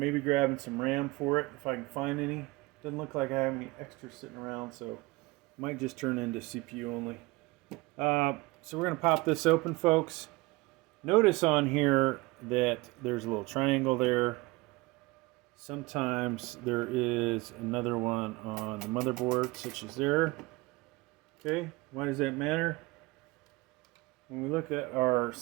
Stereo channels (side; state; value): left; quieter; 22.7 dB